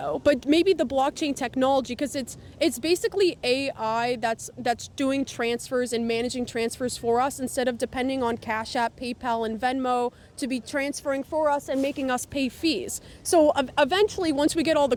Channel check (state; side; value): identical; both; correlation 1.00